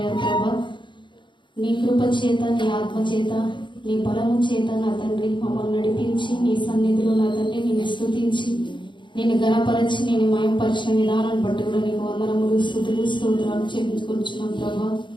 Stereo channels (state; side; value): late; right; 0.23 ms